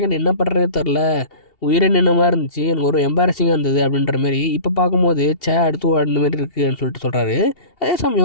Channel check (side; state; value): right; late; 2.7 ms